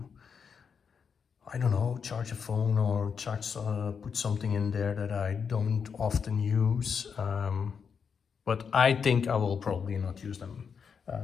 I don't know, charge a phone or charge, put something in there that I don't often use. But I think I will probably not use them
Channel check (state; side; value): quieter; right; 6.4 dB